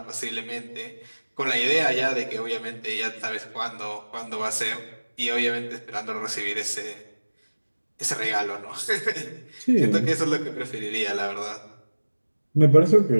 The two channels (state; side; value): inverted; both; correlation -1.00